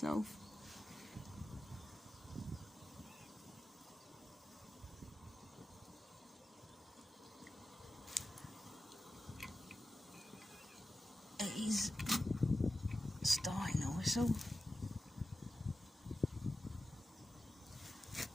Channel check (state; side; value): normal; both; correlation 0.94